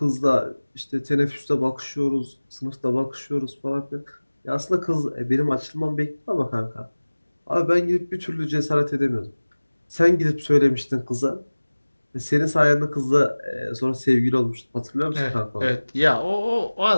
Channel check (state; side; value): inverted; both; correlation -1.00